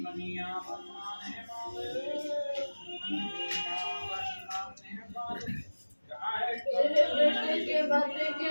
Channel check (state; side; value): inverted; both; correlation -1.00